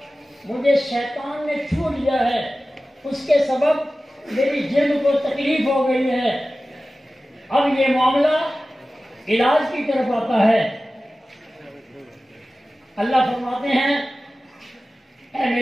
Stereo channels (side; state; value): both; normal; correlation 0.96